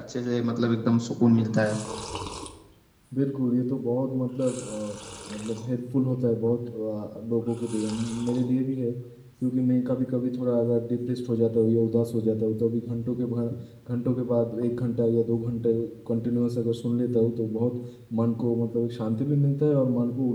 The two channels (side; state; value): both; identical; correlation 1.00